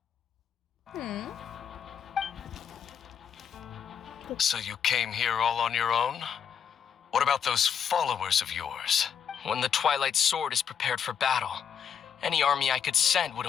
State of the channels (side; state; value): right; quieter; 7.8 dB